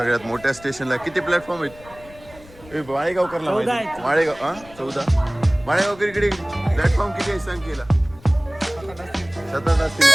मोठ्या स्टेशनला. किती प्लॅटफॉर्म आहेत? माळेगाव करला माहिती माळेगाव हा 14 माळेगाव इकडे प्लॅटफॉर्म किती आहे सांग केला 7 असतील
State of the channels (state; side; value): noise; left; rumble, 21 dB below the sound